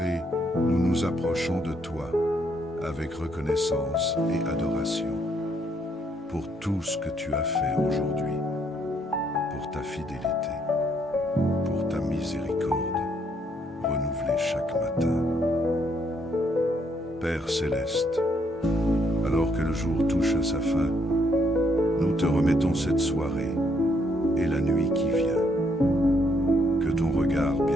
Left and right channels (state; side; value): normal; both; correlation 0.71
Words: nous nous approchons de toi avec reconnaissance et adoration pour tout ce que tu as fait aujourd'hui, pour ta fidélité, pour ta miséricorde, renouvelée chaque matin. Père céleste, alors que le jour touche à sa fin, nous te remettons cette soirée et la nuit qui vient. Que ton regard